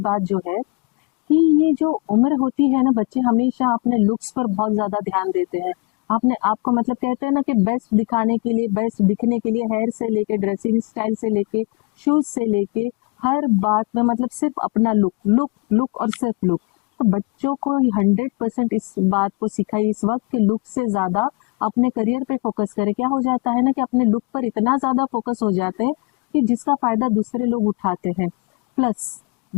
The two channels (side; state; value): right; quieter; 29.4 dB